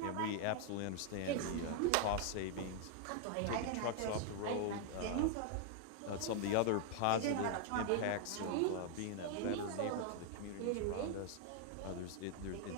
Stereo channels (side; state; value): both; different; correlation 0.00